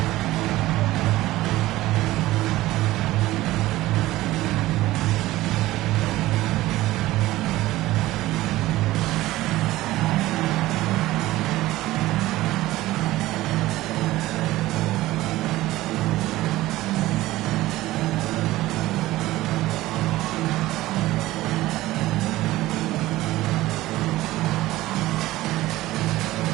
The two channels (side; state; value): left; quieter; 16.9 dB